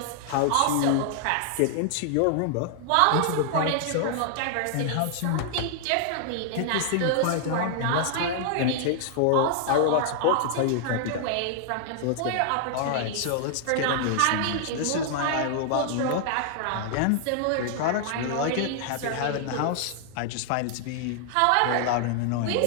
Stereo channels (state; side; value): different; both; correlation 0.00